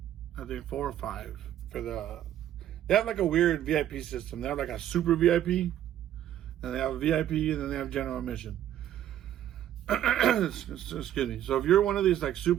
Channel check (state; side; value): quieter; left; 11.5 dB